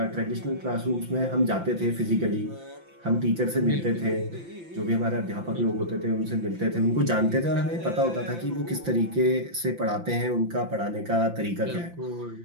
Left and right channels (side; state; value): left; late; 5.9 ms